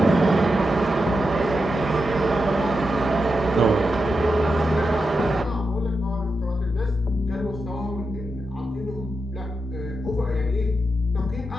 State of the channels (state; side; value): normal; both; correlation 0.87